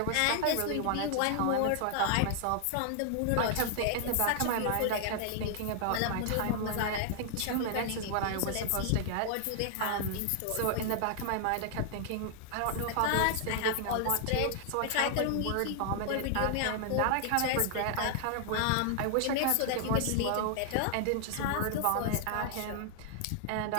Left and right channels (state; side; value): different; both; correlation 0.00